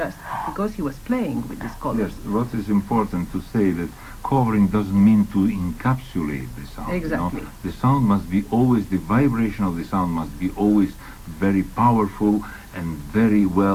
because he was playing with these colors. Yes, what is important to say that covering doesn't mean to encapsulate the sound. Exactly. You know? The sound must be always, the vibration of the sound must be always very powerful and very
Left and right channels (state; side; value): identical; both; correlation 1.00